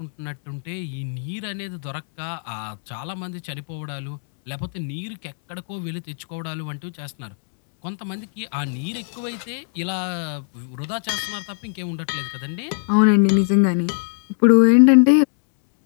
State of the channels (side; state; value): right; silent; 64 dB below the other